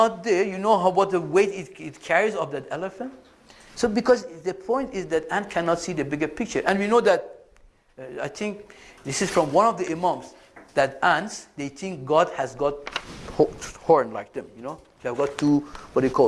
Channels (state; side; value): identical; both; correlation 1.00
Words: there, you know what the weight it carries of that elephant. So because the point is that ant cannot see the bigger picture, and we know that. I think this is from one of the imams, that ants, they think God has got horn like them, you know. They have got two, what do you